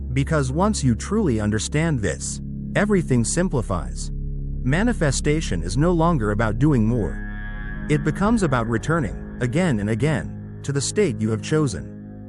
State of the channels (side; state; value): both; identical; correlation 1.00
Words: Because once you truly understand this, everything simplifies. Manifestation is no longer about doing more. It becomes about returning, again and again, to the state you have